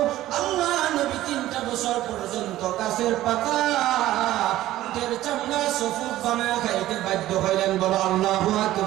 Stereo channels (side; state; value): left; quieter; 14.8 dB